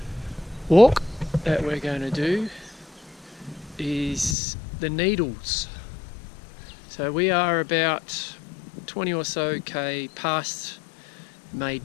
walk that we're going to do is the Needles. So we are about 20 or so k past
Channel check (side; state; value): right; drops out; at 4.4 s